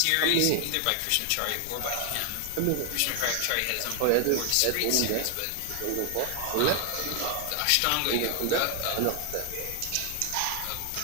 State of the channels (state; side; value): different; both; correlation 0.00